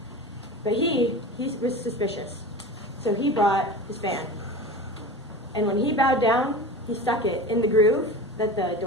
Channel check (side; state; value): both; normal; correlation 0.32